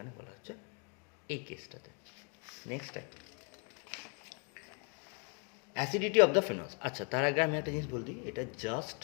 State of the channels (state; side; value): quieter; right; 36.4 dB